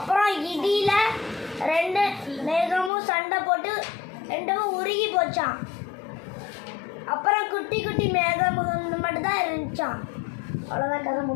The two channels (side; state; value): right; drops out; at 2.9 s